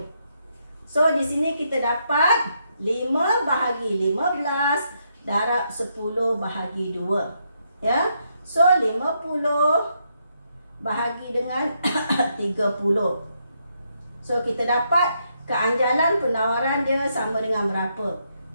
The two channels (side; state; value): both; inverted; correlation -0.78